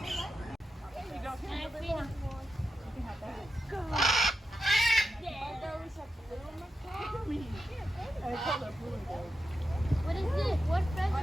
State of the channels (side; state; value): both; normal; correlation 0.89